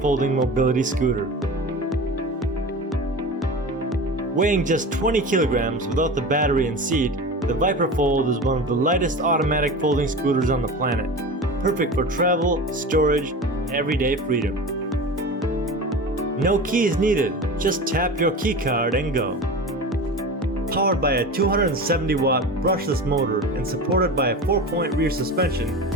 mobility scooter. Weighing just 20 kilograms without the battery and seat, the VIPERFOLD is one of the lightest automatic folding scooters on the planet, perfect for travel, storage, and everyday freedom. No keys needed, just tap your key card and go. Powered by a 270-watt brushless motor and supported by a 4-point rear suspension,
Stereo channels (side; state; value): both; normal; correlation 0.31